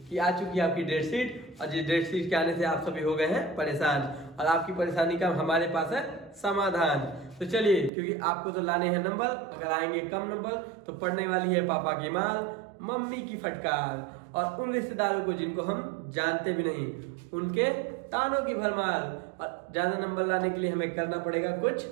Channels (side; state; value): left; drops out; at 7.9 s